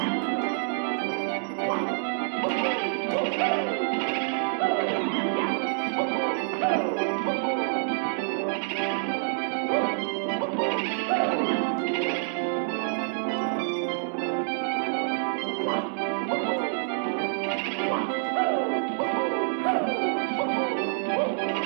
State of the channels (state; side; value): silent; left; digital silence